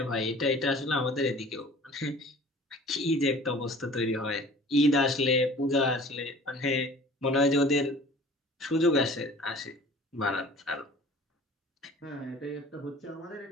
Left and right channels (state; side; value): normal; both; correlation 0.47